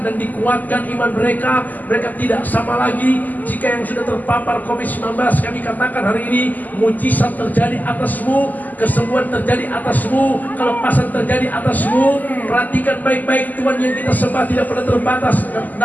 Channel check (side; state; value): right; late; 0.082 ms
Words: dan dikuatkan iman mereka. Mereka tidak sama lagi. Jika yang sudah terpapar COVID-19, kami katakan hari ini, mujizat terjadi atasmu, kesembuhan terjadi atasmu, kelepasan terjadi atasmu. Perhatikan baik-baik, Tuhan yang kita sembah tidak pernah terbatas